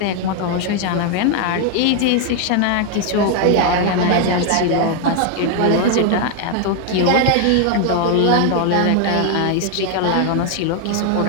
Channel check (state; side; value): different; both; correlation 0.00